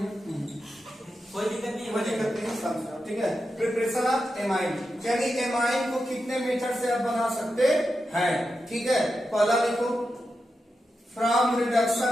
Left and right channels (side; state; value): both; normal; correlation 0.89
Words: कोई दिक्कत नहीं समझो, ठीक है। प्रिपरेशन ऑफ एमाइन यानी एमाइन को कितने मेथड से आप बना सकते हैं, ठीक है। पहला लिखो from